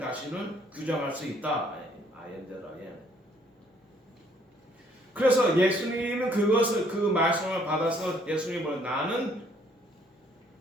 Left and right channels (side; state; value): both; normal; correlation 0.64